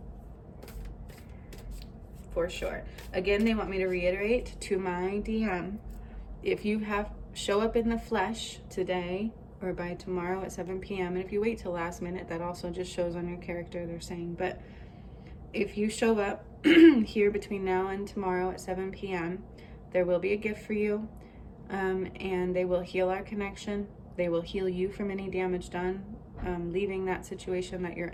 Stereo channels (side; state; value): both; identical; correlation 1.00